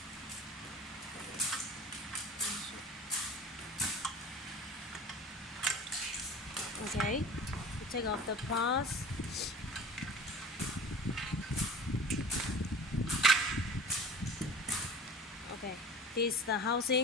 Okay, you take off the parts. Okay, this is the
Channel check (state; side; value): normal; both; correlation 0.41